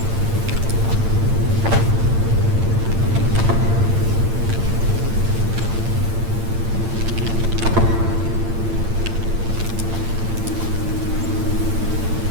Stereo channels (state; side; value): late; left; 8.8 ms